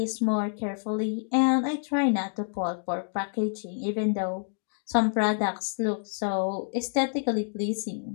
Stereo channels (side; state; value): right; silent; digital silence